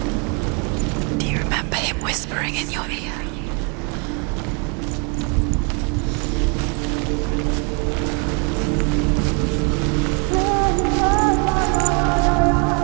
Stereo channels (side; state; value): left; quieter; 35.3 dB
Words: Do you remember him whispering in your ear?